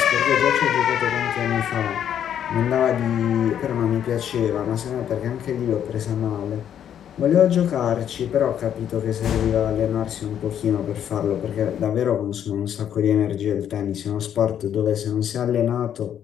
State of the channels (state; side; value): quieter; right; 9.6 dB